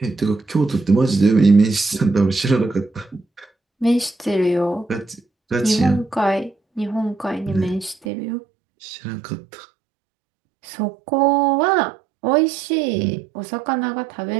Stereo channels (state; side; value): drops out; left; at 8.1 s